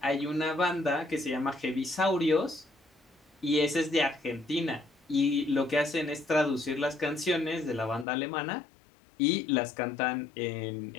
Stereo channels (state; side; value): drops out; right; at 8.1 s